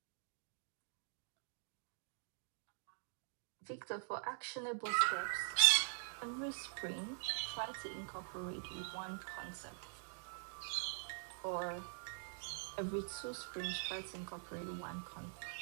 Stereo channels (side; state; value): left; silent; digital silence